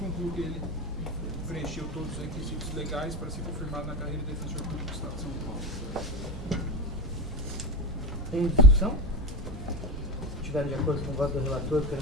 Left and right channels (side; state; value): both; normal; correlation 0.22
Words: que ele preencheu todos os requisitos legais para ser confirmado na carreira de defensor público do Estado de São Paulo. Em discussão? Se estiverem de acordo com o voto do relator,